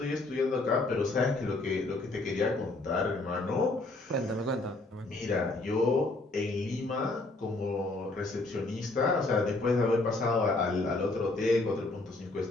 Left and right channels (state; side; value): quieter; right; 3.0 dB